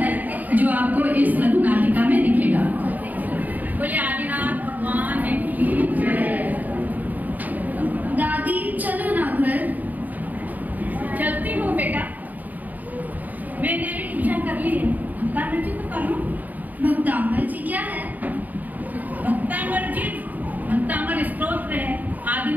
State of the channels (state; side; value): late; left; 0.081 ms